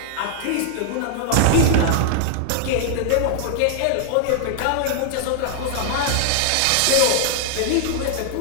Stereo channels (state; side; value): different; both; correlation 0.00